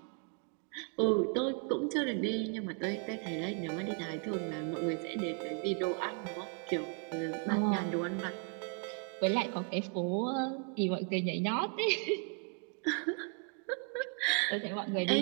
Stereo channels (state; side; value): quieter; left; 38.2 dB